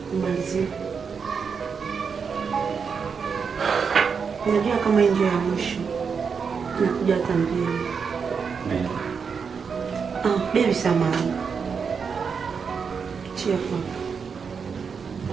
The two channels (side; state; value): left; quieter; 6.0 dB